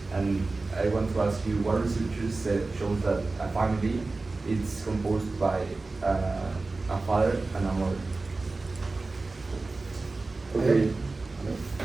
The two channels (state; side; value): quieter; left; 3.5 dB